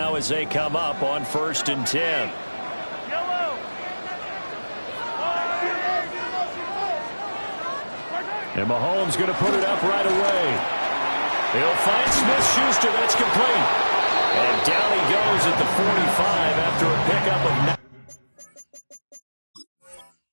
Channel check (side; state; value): both; inverted; correlation -1.00